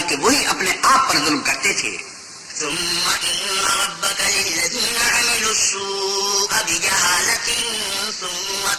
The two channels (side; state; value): both; identical; correlation 1.00